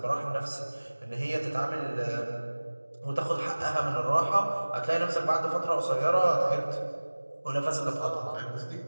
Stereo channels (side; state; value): both; inverted; correlation -1.00